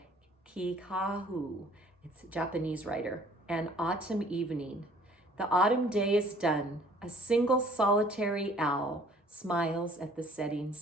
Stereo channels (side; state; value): both; normal; correlation 0.55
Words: Kikahu. It's a Japanese writer. An autumn evening. The autumn day is done. A single solitary owl smiles at the setting